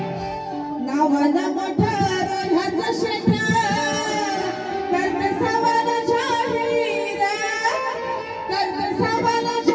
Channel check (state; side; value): identical; both; correlation 1.00